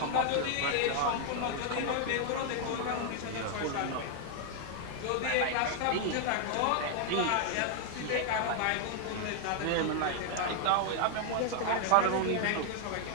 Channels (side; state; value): both; different; correlation 0.00